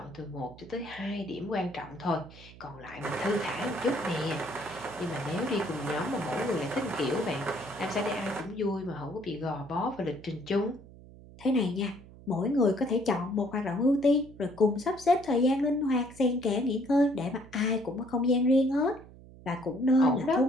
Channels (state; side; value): noise; right; hum, 20 dB below the sound